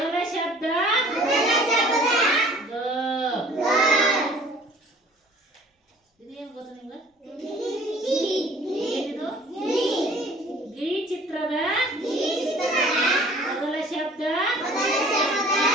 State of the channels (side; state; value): both; normal; correlation 0.50